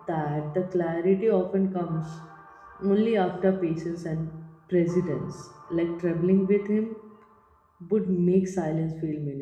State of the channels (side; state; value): both; identical; correlation 1.00